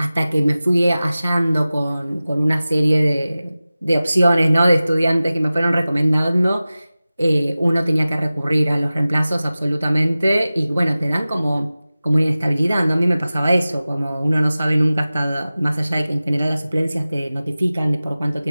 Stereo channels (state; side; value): inverted; both; correlation -0.97